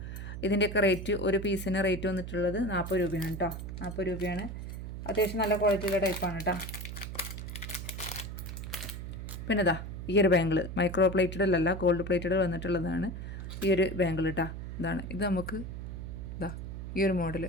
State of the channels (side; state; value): right; noise; hum, 7 dB below the sound